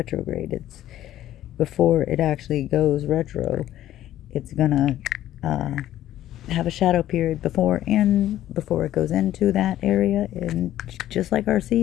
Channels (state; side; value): quieter; right; 13.0 dB